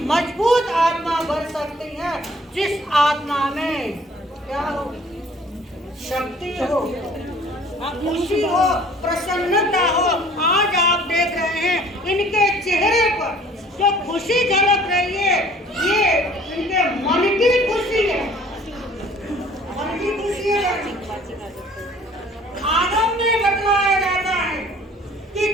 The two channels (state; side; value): normal; both; correlation 0.53